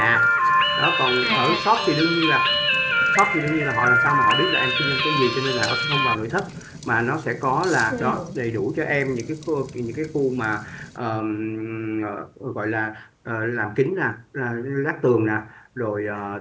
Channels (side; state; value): both; identical; correlation 1.00